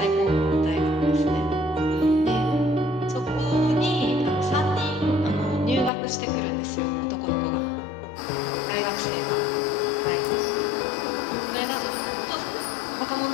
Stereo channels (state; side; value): drops out; right; at 5.9 s